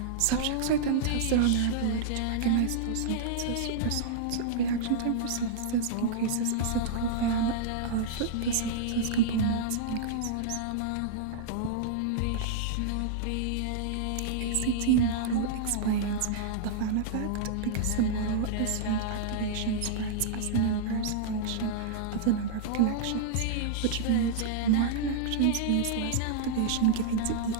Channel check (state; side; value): different; both; correlation -0.02